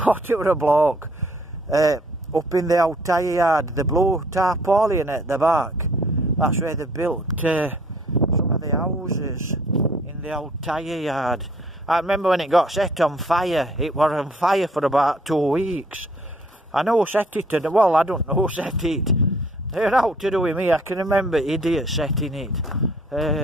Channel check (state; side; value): normal; both; correlation 0.60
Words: What, it were a bloke up in the old tyre yard, the blue tarpaulin at the back. That's where they built some of the houses in the old tyre yard. I remember when it got set on fire. It was on fire for about 2 weeks. I know who set it, well, I don't know who set it. They're out to do with me. I can remember idiots setting